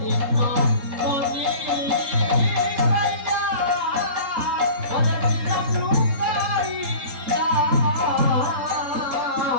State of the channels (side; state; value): left; late; 3.7 ms